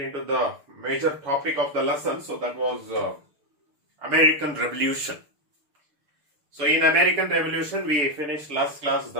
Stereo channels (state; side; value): late; left; 6.7 ms